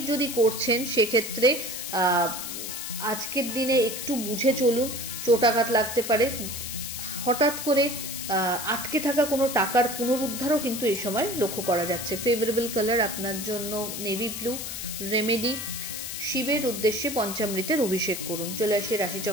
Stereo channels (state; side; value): noise; left; hiss, 6 dB below the sound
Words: যদি করছেন সেক্ষেত্রে আজকের দিনে একটু বুঝে চলুন, চোটাঘাত লাগতে পারে। হঠাৎ করে আটকে থাকা কোনো টাকার পুনরুদ্ধারও কিন্তু এই সময় লক্ষ্য করা যাচ্ছে। ফেভারেবল কালার আপনার জন্য নেভি ব্লু। রেমেডি, শিবের উদ্দেশ্যে পঞ্চামৃতের অভিষেক করুন। চলে আসি